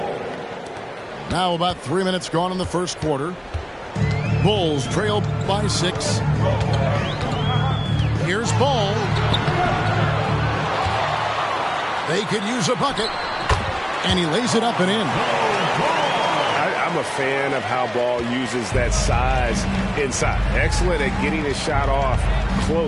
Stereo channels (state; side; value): identical; both; correlation 1.00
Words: Now about 3 minutes gone in the first quarter. Bulls trail by 6. Here's Ball. They could use a bucket. And he lays it up and in. I'm a fan of how Ball uses that size inside. Excellent at getting his shot off